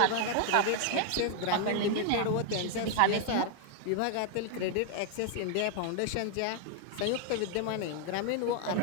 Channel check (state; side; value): different; both; correlation 0.00